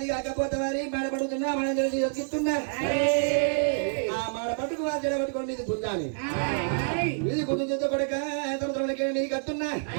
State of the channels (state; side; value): silent; left; digital silence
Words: కాకపోతే వారి మాడ పడుతున్నా మనం తెలిసి ఎత్తున్నా. ఆ మాడ పట్టుకు వారు జడ పట్టుకోండి ఇది గుంజాలి ఇది గుంజు కొడుక సముద్రంలోకి నీ కట్టున్నా